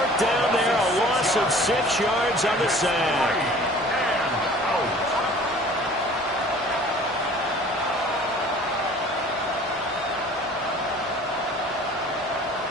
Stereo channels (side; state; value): both; normal; correlation 0.48